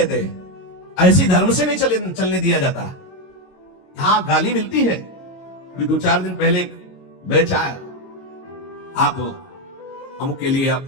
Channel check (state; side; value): late; right; 22 ms